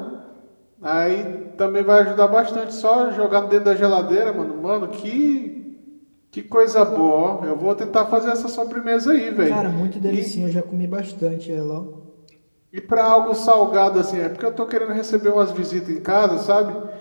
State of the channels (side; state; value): both; inverted; correlation -1.00